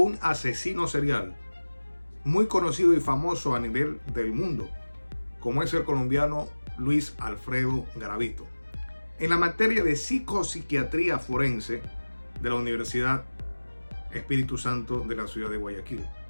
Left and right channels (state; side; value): inverted; both; correlation -1.00